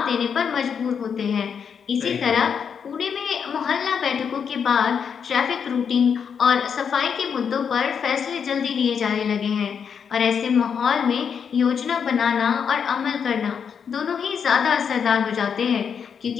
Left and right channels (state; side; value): quieter; right; 7.0 dB